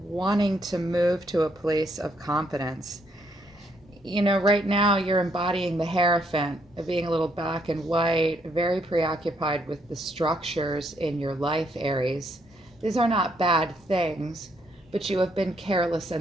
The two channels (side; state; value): both; normal; correlation 0.73